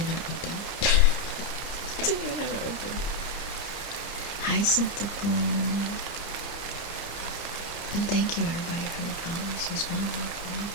even open. Didn't even have it open. Hi, Syntacle. And thank you everybody for the follows as well.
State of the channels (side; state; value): right; late; 30 ms